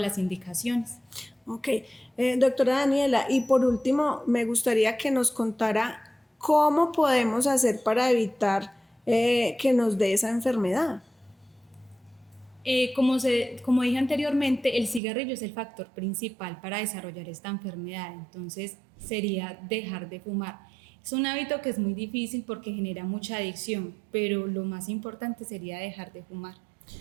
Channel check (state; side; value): drops out; left; at 15.0 s